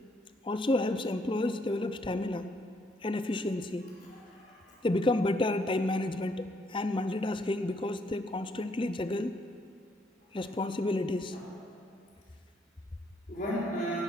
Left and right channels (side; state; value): both; normal; correlation 0.71